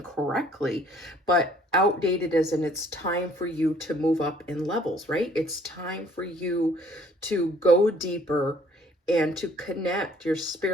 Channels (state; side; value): normal; both; correlation 0.59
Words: but outdated as in it's time for you to move up in levels, right? It's time for you to go deeper and to connect your